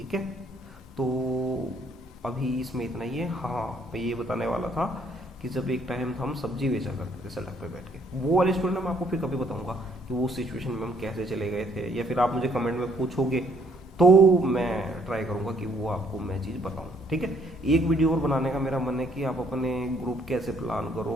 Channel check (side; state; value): both; normal; correlation 0.65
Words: है। तो अभी इसमें इतना ही है। हाँ, मैं ये बताने वाला था कि जब एक टाइम था हम सब्जी बेचा करते थे सड़क पे बैठ के, वो वाली स्टोरी ना मैं आपको फिर कभी बताऊंगा कि वो सिचुएशन में हम कैसे चले गए थे, या फिर आप मुझे कमेंट में पूछोगे तो मैं ट्राई करूंगा कि वो आपको मैं चीज़ बताऊं, ठीक है। एक वीडियो और बनाने का मेरा मन है कि आप अपने ग्रुप कैसे प्लान